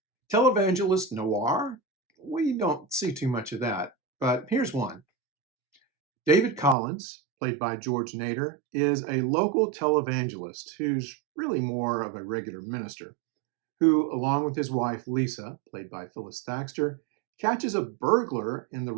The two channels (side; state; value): left; drops out; at 6.8 s